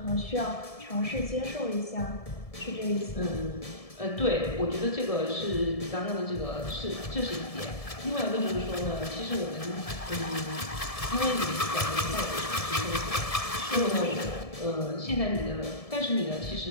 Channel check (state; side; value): late; right; 1.7 ms